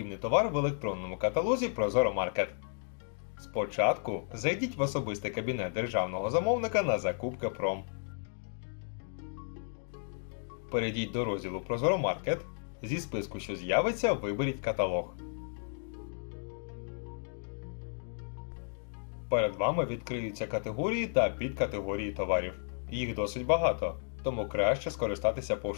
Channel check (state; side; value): silent; right; digital silence